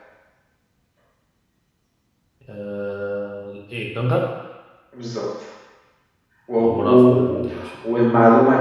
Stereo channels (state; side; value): identical; both; correlation 1.00